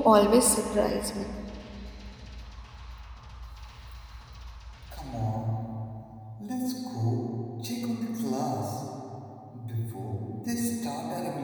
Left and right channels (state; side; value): identical; both; correlation 1.00